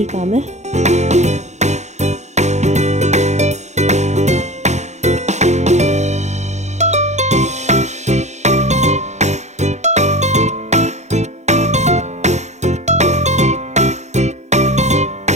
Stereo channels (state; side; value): late; left; 0.33 ms